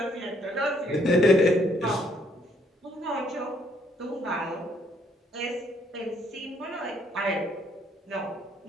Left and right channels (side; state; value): both; normal; correlation 0.67